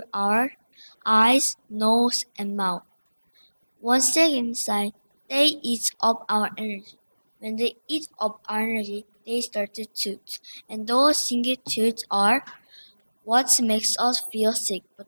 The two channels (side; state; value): both; inverted; correlation -1.00